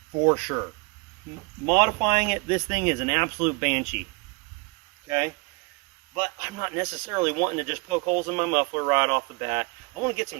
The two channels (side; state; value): left; quieter; 29.7 dB